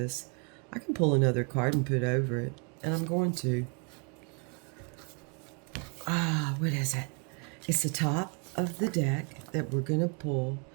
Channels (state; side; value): quieter; left; 36.3 dB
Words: I can pull another card and put over it, and I'm going to. What is it? It's the top of the deck that we're going to pull,